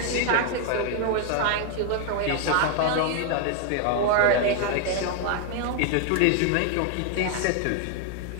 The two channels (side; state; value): both; different; correlation 0.00